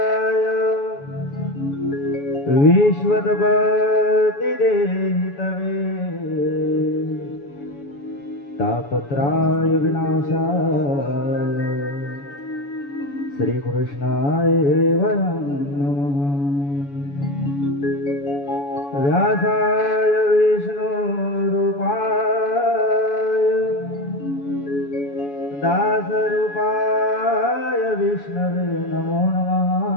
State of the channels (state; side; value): late; right; 7.1 ms